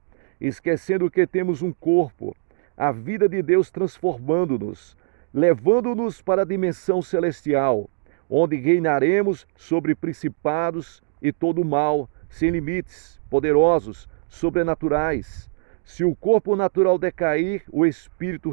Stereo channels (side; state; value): left; silent; 63 dB below the other